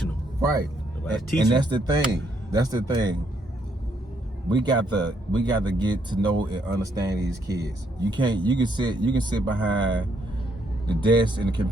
them. Right. And that's the thing. That's the thing. We got to get to know and understand these kids. You can sit behind the desk and the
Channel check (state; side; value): normal; both; correlation 0.73